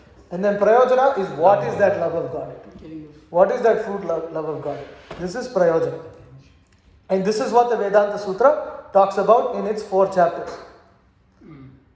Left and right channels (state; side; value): identical; both; correlation 1.00